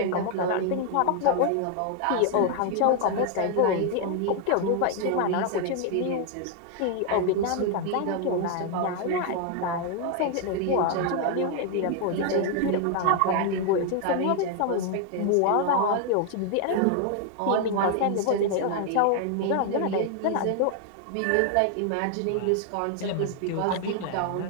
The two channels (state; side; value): different; both; correlation 0.00